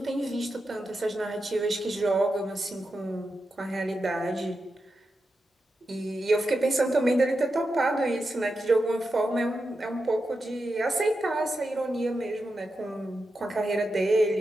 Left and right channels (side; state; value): both; normal; correlation 0.89